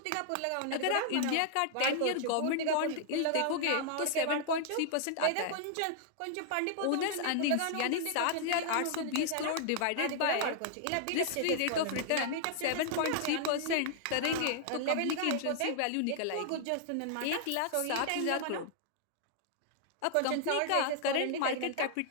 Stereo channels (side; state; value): both; different; correlation -0.01